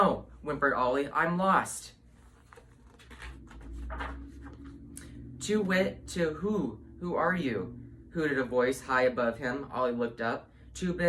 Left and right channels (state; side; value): identical; both; correlation 1.00